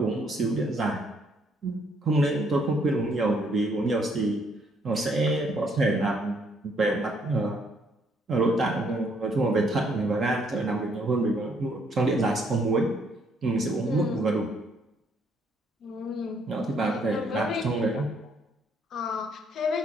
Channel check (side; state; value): both; normal; correlation 0.68